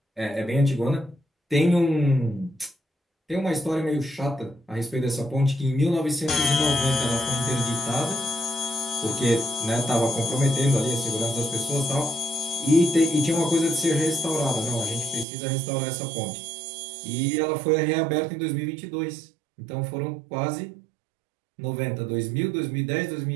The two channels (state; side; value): drops out; left; at 15.2 s